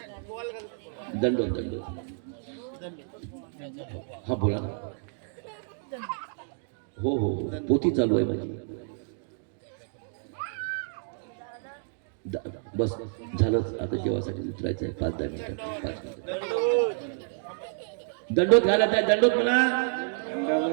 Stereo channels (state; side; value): silent; left; digital silence